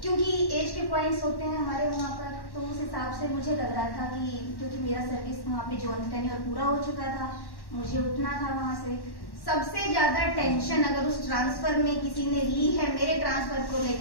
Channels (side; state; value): right; late; 1.1 ms